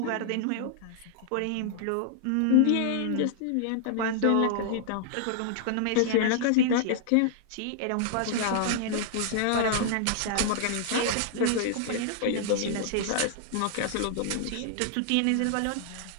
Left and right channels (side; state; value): both; different; correlation -0.01